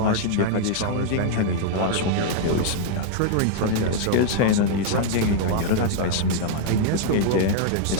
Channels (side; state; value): both; different; correlation 0.00